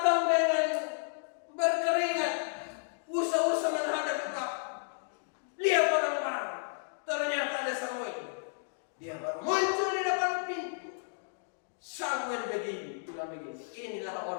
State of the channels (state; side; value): silent; right; digital silence